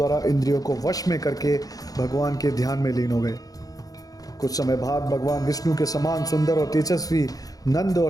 इंद्रियों को वश में करके भगवान के ध्यान में लीन हो गए। कुछ समय बाद भगवान विष्णु के समान सुंदर और तेजस्वी नंद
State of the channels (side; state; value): right; late; 0.18 ms